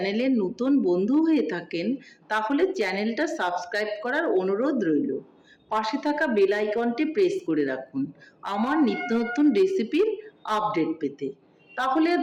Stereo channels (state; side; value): identical; both; correlation 1.00